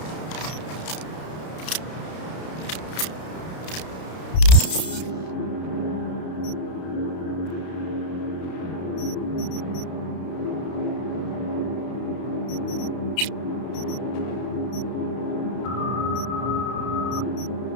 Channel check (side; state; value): right; late; 32 ms